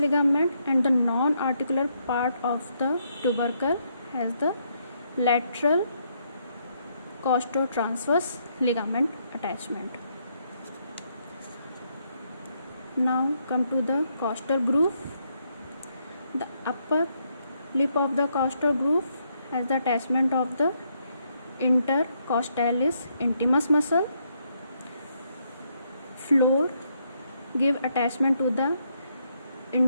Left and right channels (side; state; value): both; inverted; correlation -0.75